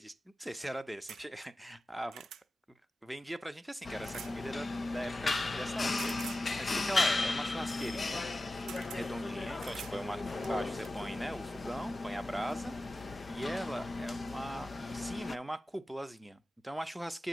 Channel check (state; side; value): normal; both; correlation 0.94